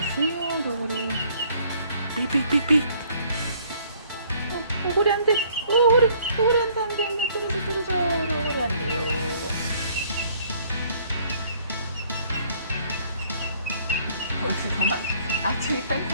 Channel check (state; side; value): inverted; both; correlation -0.61